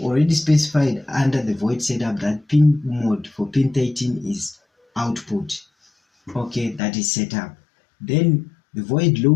specified under the void setup that pin mode for pin 13 is output, okay, that is set up, then the void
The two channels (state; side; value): drops out; right; at 6.8 s